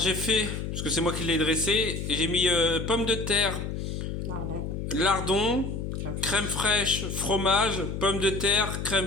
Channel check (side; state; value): left; noise; hum, 4 dB below the sound